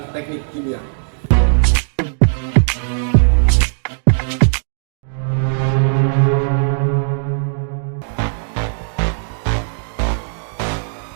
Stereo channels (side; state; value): left; silent; digital silence